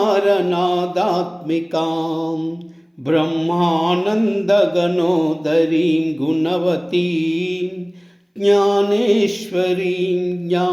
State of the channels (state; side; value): identical; both; correlation 1.00